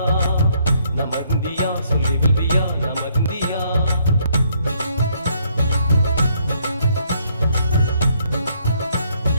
நம்ம இந்தியா சொல்லி வில்வியா நம்ம இந்தியா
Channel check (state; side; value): inverted; both; correlation -0.69